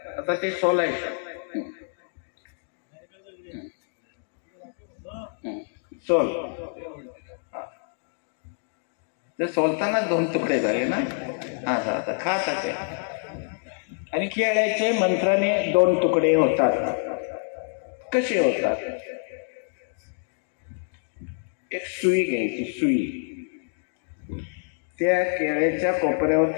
आता ते सोलायचं. सोल. ते सोलताना 2 तुकडे झाले ना. आता खात आहे. आणि केळ्याचे मंत्राने 2 तुकडे होतात. कसे होतात? एक सुई घ्यायची. सुई त्या केळ्याच्या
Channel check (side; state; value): right; silent; digital silence